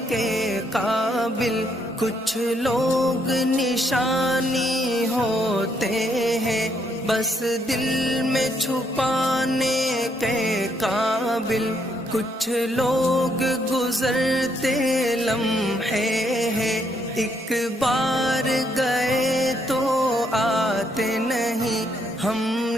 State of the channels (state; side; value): normal; both; correlation 0.73